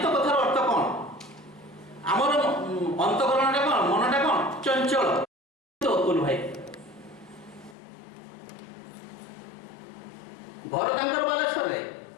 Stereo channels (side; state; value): right; drops out; at 7.8 s